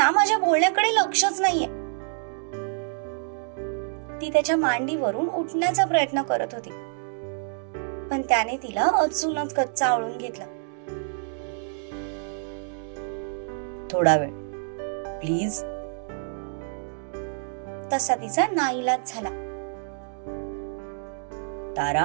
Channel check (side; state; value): left; silent; digital silence